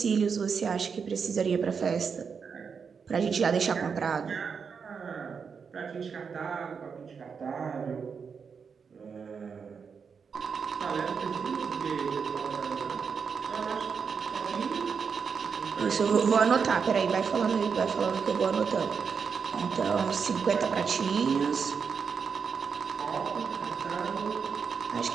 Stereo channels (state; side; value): quieter; left; 6.0 dB